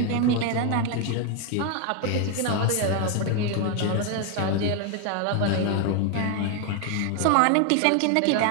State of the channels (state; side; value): different; both; correlation 0.01